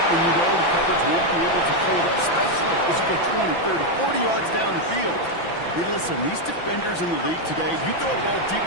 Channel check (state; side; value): late; right; 5.9 ms